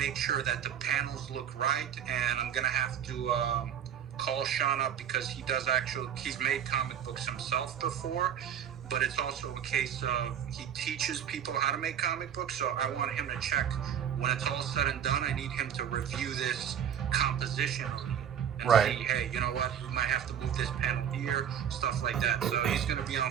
sure that the panels look right, and I'm gonna have to call Sean up because he's made comic books himself before, but it's also a case of he teaches people how to make comic books. So I want him to check when it's all said and done. I need him to review this composition and see, hey, you know what, we might have to move this panel here, stuff like that. So he's gonna be on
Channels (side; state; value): left; quieter; 8.9 dB